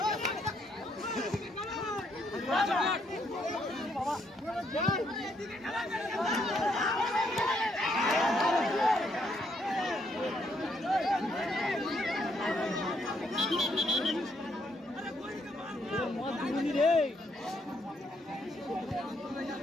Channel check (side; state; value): both; normal; correlation 0.73